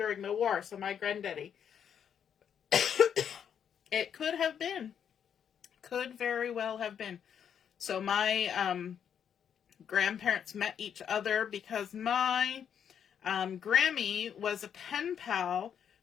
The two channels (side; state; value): right; quieter; 8.3 dB